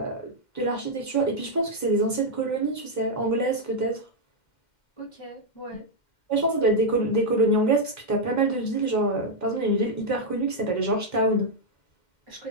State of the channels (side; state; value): right; late; 2.1 ms